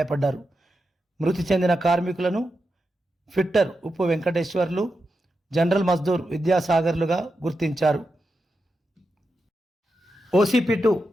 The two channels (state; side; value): normal; both; correlation 0.88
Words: మృతి చెందిన కార్మికులను ఫిట్టర్ ఉప్పు వెంకటేశ్వర్లు, జనరల్ మజ్దూర్ విద్యాసాగర్లుగా గుర్తించారు. OCP2